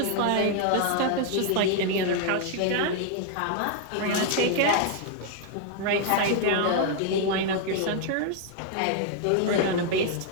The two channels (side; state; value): both; different; correlation 0.00